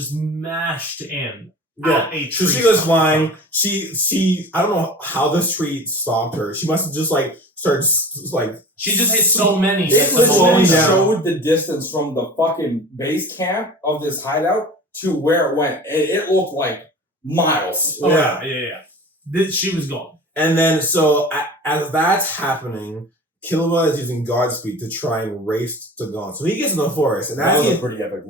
mashed in. Yeah, a so tree she goes stump. flying. She I don't know how this tree stopped her. She must have just like started like. She just hit so many. It was slowing literally down. showed the distance from the fucking base camp of this hideout to where it went. It looked like miles. Oh, Yeah. yeah. She was gone. And then so as that's happening, Killua is using Godspeed to try and race to Gon. So he gets in the forest, and That as was he, a pretty epic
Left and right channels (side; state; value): both; normal; correlation 0.38